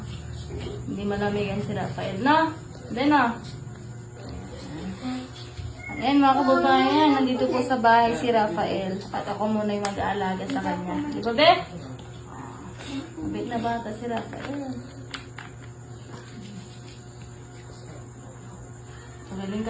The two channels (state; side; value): identical; both; correlation 1.00